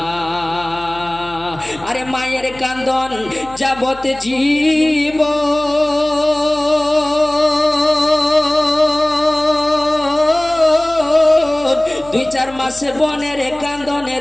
আরে মায়ের কান্দন যাবত জীব দুই চার মাসে বনের কান্দন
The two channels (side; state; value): left; noise; hum, 21 dB below the sound